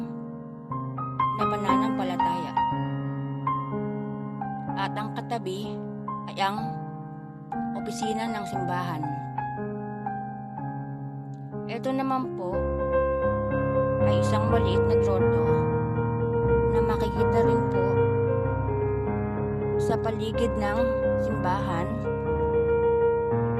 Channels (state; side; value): identical; both; correlation 1.00